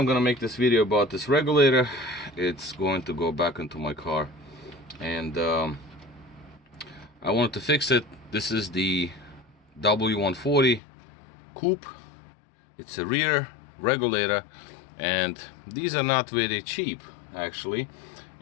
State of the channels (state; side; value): drops out; right; at 10.8 s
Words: gonna make this video about this regulator. It's going to go back into my car, and I wanted to fix it. This is the W140 coupe. It's a rear regulator, and these are not very cheap actually.